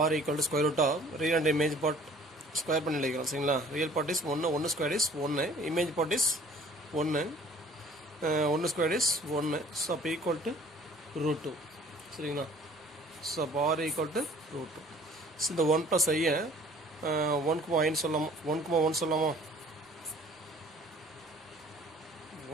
r equal to square root of real and image part square பண்ணி எழுதிக்கிறோம். சரிங்களா? Real part is 1, 1 square is 1, image part is 1, 1 square is 1. So அப்போ ஈக்குவல் டு ரூட் 2. சரிங்களா? ஸோ அப்போ r equal to root 2. So இந்த 1 ப்ளஸ் ஐயை 1,1 சொல்லாமா? 1,1 சொல்லாமா?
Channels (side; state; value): both; normal; correlation 0.52